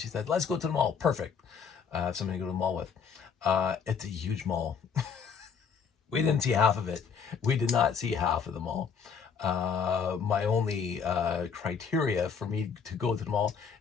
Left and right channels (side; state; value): right; quieter; 6.4 dB